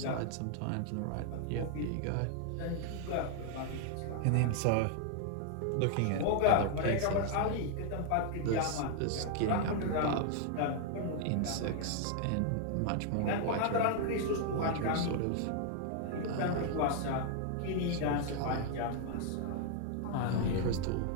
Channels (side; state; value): both; different; correlation 0.00